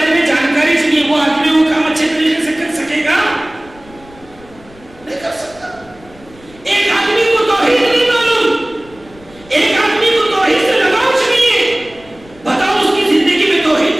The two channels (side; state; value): left; noise; rumble, 24 dB below the sound